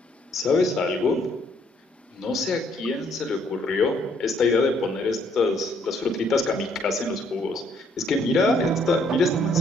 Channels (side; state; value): both; normal; correlation 0.67